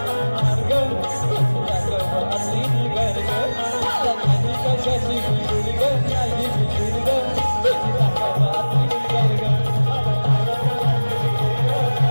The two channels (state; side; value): inverted; both; correlation -1.00